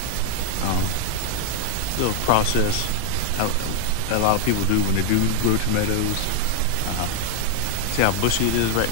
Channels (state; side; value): different; both; correlation 0.00